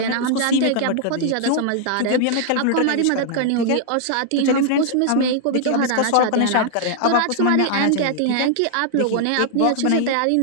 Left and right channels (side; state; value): both; different; correlation -0.01